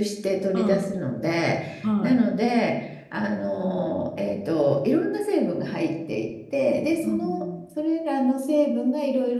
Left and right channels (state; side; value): identical; both; correlation 1.00